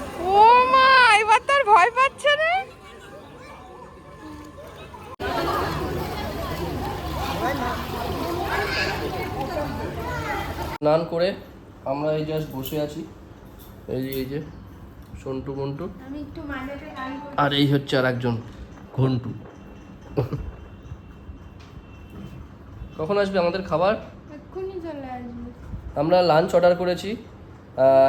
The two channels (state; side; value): identical; both; correlation 1.00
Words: ও মা, এবার তার ভয় পাচ্ছে না। স্নান করে আমরা এই জাস্ট বসে আছি, এই যে সন্টু মন্টু, আমি একটু মাঝেতে গান করি। আর এই হচ্ছে আর একজন ঘন্টু। কখন আসবে আমাদের খাবার? এক্ষুনি চলে আসবে। আমরা লাঞ্চ অর্ডার করেছি,